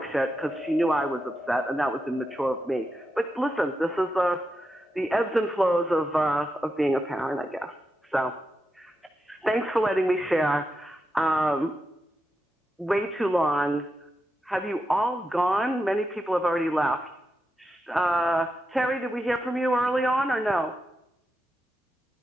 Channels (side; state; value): both; normal; correlation 0.87